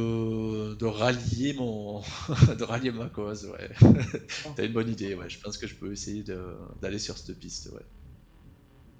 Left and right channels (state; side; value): identical; both; correlation 1.00